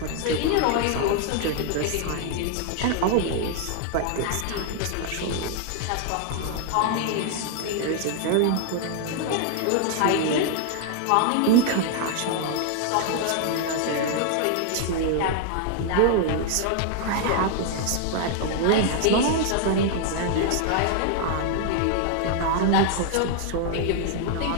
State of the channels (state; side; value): different; both; correlation 0.00